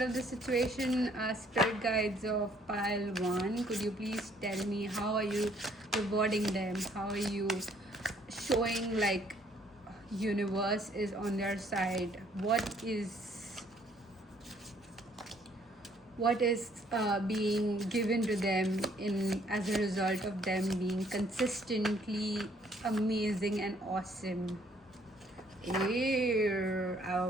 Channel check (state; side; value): normal; both; correlation 0.64